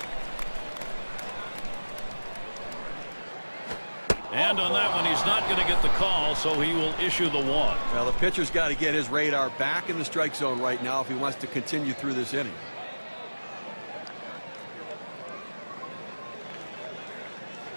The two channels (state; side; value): inverted; both; correlation -1.00